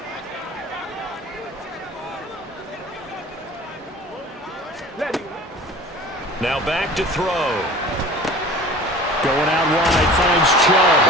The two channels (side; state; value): both; normal; correlation 0.42